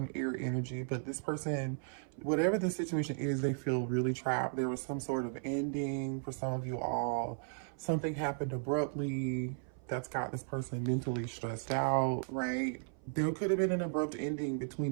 air energy. But this person, whatever the situation is, they feel really trapped. There was some sort of ending for some of you all. Something happened abruptly that's got this person mentally stressed out, right? There could have been an abrupt ending between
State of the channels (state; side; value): silent; left; 54 dB below the other